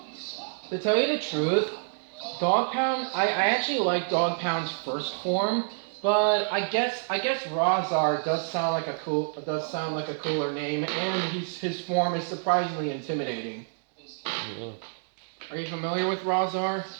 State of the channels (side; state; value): left; silent; digital silence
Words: To tell you the truth, Dog Pound, I actually like Dog Pound's first form, but I guess Razar does sound like a cooler name, and his form is surprisingly intimidating. Yeah. Are you familiar with Razar?